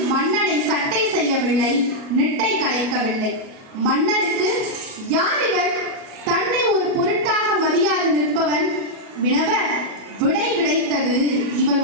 மன்னனை சட்டை செய்யவில்லை, நிட்டை கலைக்கவில்லை. மன்னனுக்கு யார் இவர், தன்னை ஒரு பொருட்டாக மதியாது நிற்பவன் வினவ, விடை கிடைத்தது இவன்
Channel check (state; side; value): late; left; 37 ms